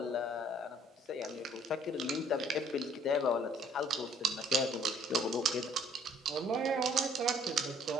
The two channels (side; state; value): both; normal; correlation 0.59